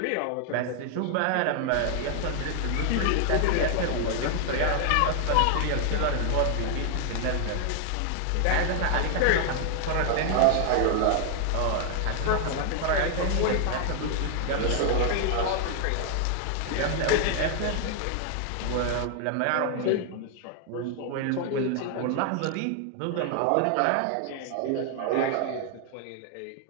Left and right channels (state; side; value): different; both; correlation 0.00